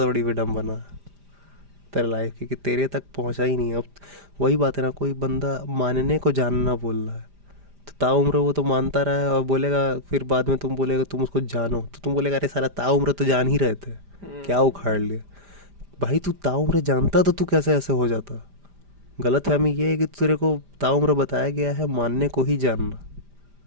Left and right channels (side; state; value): left; late; 5.0 ms